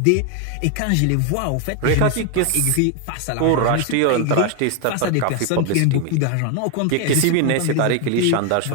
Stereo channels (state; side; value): different; both; correlation 0.01